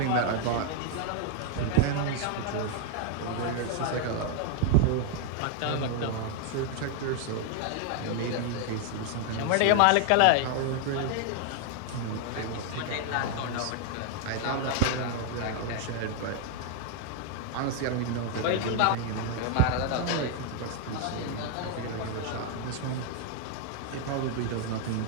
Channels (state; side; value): different; both; correlation 0.00